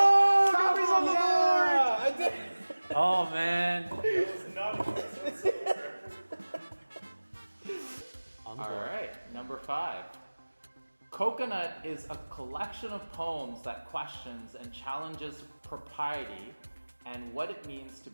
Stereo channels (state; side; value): inverted; both; correlation -1.00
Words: Gabby's on the yeah, I did. Oh man. All right, number 5. Coconut is a collection of poems that questions and challenges propriety and what it means to